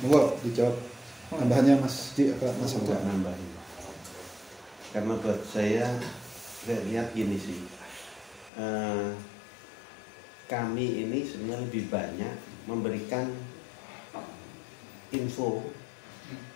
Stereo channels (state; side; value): drops out; right; at 8.5 s